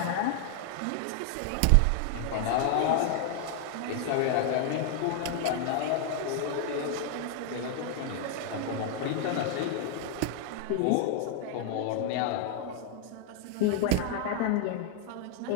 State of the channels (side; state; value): both; different; correlation 0.00